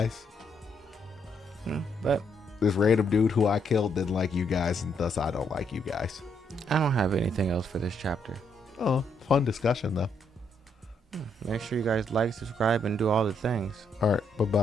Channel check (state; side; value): normal; both; correlation 0.74